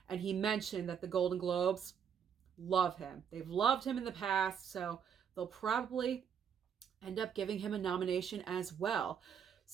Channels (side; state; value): left; quieter; 7.8 dB